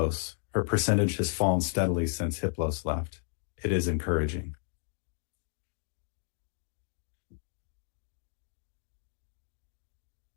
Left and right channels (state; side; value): silent; right; 56 dB below the other